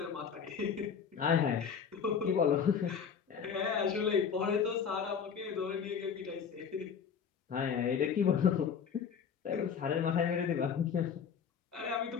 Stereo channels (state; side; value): quieter; right; 7.0 dB